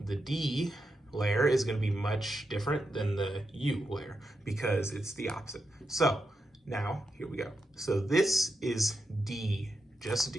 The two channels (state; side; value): normal; both; correlation 0.86